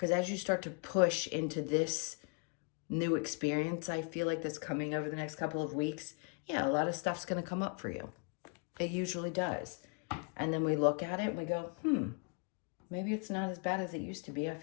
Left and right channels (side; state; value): right; quieter; 35.4 dB